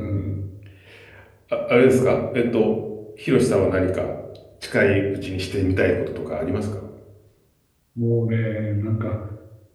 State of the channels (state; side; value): identical; both; correlation 1.00